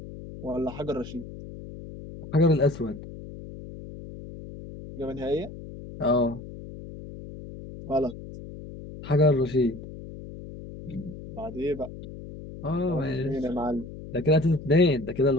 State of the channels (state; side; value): noise; left; hum, 13 dB below the sound